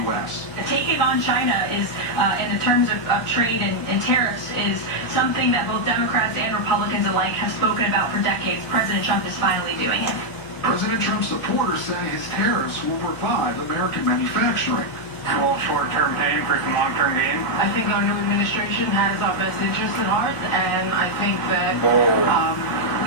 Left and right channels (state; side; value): noise; left; hum, 20 dB below the sound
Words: U.S. Taking on China is, in the terms of trade and tariffs, is something that both Democrats and Republicans alike have spoken about for decades. President Trump is finally doing it. President Trump's supporters say his tariffs will revive American manufacturing. A little short-term pain for some long-term gain. I think our new administration has our best interests at heart, and I think that